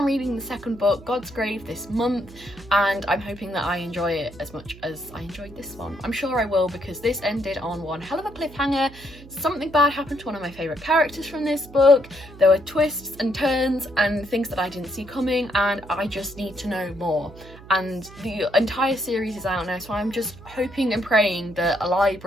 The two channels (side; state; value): right; noise; hum, 19 dB below the sound